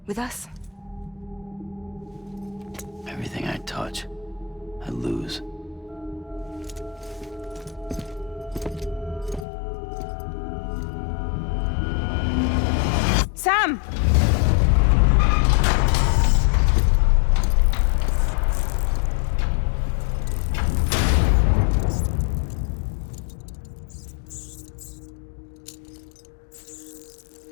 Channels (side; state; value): right; drops out; at 9.5 s